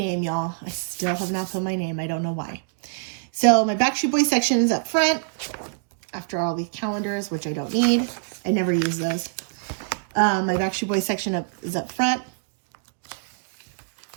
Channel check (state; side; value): silent; left; digital silence